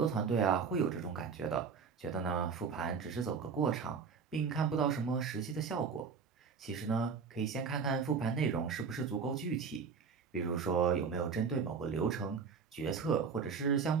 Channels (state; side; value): quieter; left; 5.7 dB